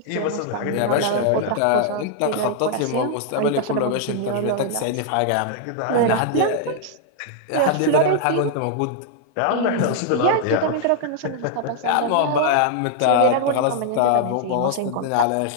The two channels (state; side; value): different; both; correlation 0.00